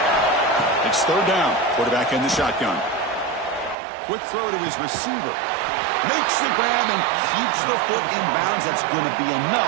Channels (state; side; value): drops out; left; at 3.8 s